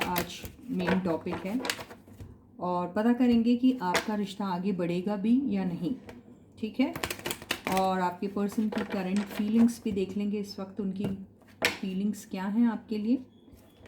आज मेन टॉपिक है। और पता करेंगे कि आपका रिश्ता आगे बढ़ेगा भी या नहीं, ठीक है। और आपके पर्सन की करंट फीलिंग्स भी देख लेंगे, इस वक्त उनकी फीलिंग्स क्या हैं आपके लिए,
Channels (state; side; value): identical; both; correlation 1.00